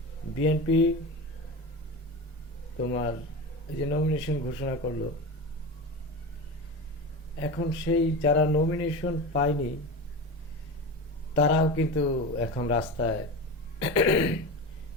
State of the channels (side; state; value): both; normal; correlation 0.25